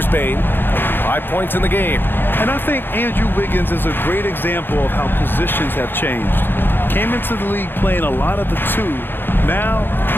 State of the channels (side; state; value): right; late; 0.099 ms